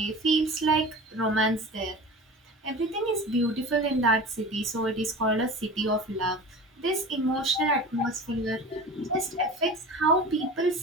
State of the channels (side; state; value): both; normal; correlation 0.35